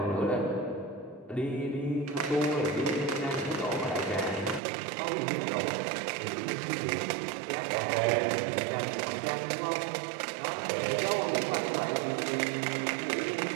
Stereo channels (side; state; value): left; drops out; at 4.6 s